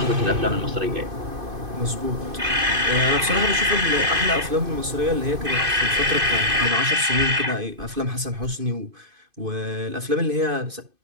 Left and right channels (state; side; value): late; left; 2.5 ms